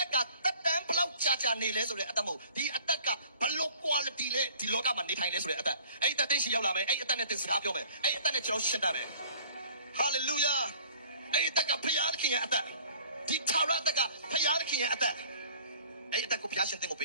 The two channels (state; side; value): inverted; both; correlation -0.52